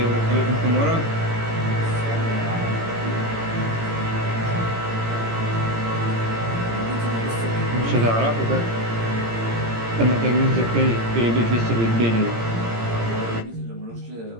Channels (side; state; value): left; late; 17 ms